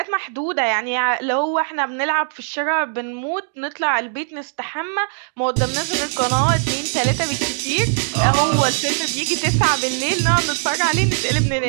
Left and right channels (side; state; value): left; silent; digital silence